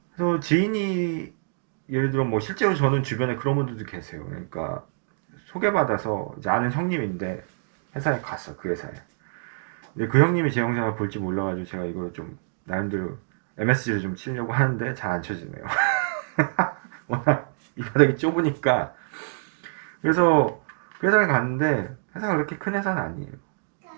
그래서 지인이 예를 들어 뭐 실제로 저는 주변에 그런 분들도 계세요. 그러니까 소개받아서 이제 아는 형님인데 회사에 갔어, 그 회사에. 근데 그 형님이 제 영상을 볼지 몰라가지고 제가 이걸 좀 나름대로 MSG를 좀 치려고 하는데 잘 안 쳐지네요. 워낙 이 바닥이 좁으니까. 그래서 그 회사를 갔는데 회사가 그렇게 큰 회사는 아니에요.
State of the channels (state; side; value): silent; left; digital silence